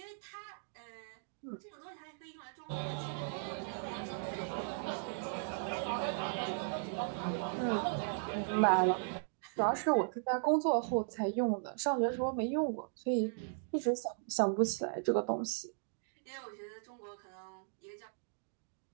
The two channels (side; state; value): left; silent; digital silence